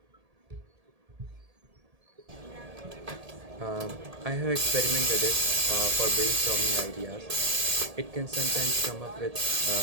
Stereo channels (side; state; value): left; late; 1.8 ms